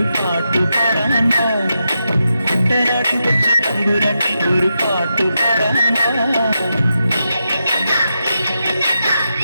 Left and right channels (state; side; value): inverted; both; correlation -0.87